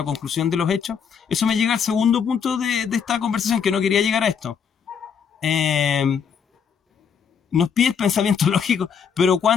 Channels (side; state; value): right; quieter; 7.0 dB